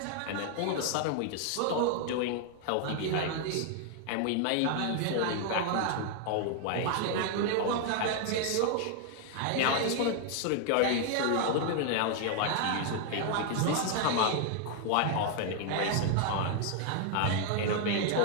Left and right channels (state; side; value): different; both; correlation 0.00